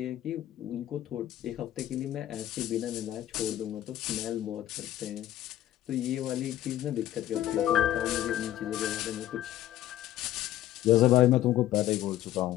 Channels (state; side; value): quieter; right; 13.2 dB